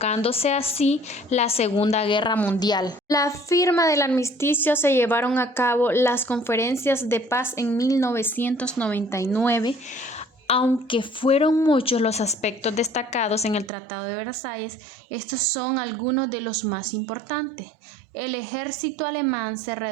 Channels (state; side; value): drops out; left; at 13.7 s